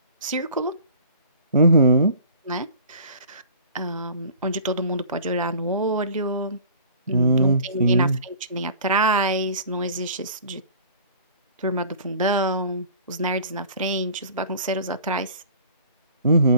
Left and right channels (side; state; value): both; inverted; correlation -0.47